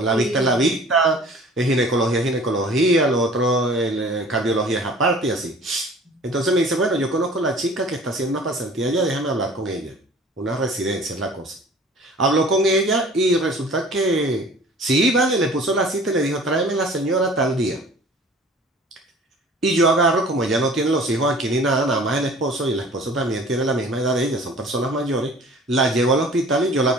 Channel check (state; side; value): normal; both; correlation 0.47